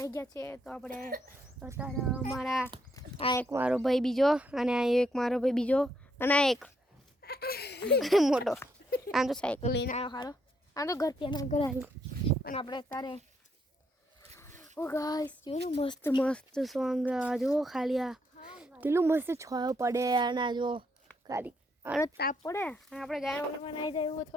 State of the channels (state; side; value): normal; both; correlation 0.75